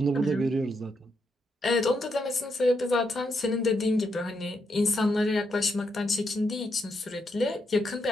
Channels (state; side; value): normal; both; correlation 0.80